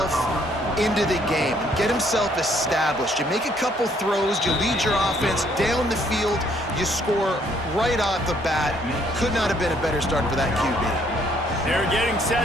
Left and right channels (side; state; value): both; normal; correlation 0.66